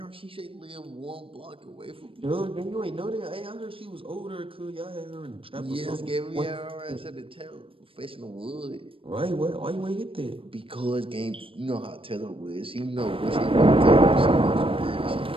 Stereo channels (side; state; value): left; late; 0.26 ms